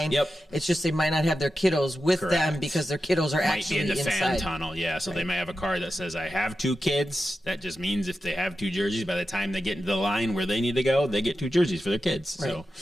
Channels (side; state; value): both; normal; correlation 0.91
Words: Yep. It's just they might not have their kiddos with them because their kiddos are actually in the inside. fan tunnel. Yeah, so they may have a card that says, I have 2 kids. That just means if they have 2 jerseys, by the time they get into the line where they need to go, they get 2 jerseys for their kids. Right. So,